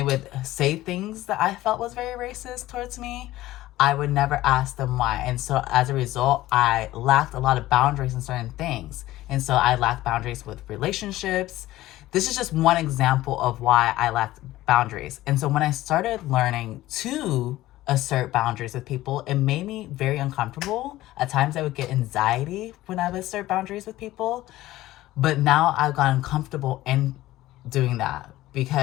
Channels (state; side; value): quieter; right; 16.1 dB